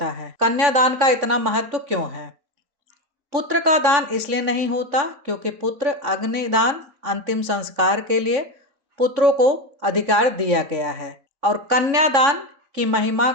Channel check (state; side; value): late; left; 3.5 ms